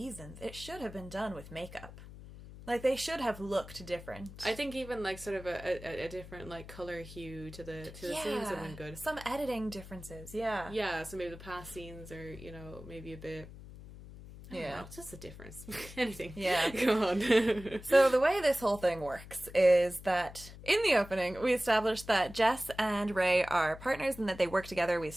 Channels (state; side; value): noise; left; hum, 15 dB below the sound